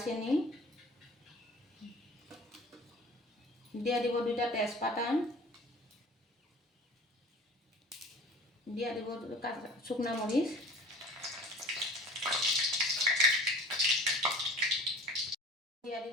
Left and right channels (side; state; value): both; normal; correlation 0.43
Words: দিয়ে দিব দুইটা তেজপাতা, দিয়ে দিব শুকনা মরিচ, দিয়ে